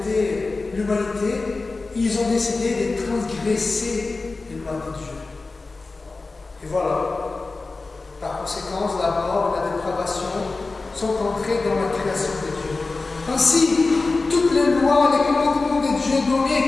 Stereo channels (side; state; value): right; quieter; 3.7 dB